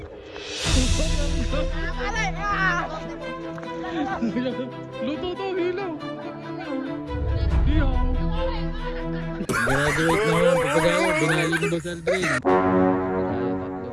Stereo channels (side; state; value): both; identical; correlation 1.00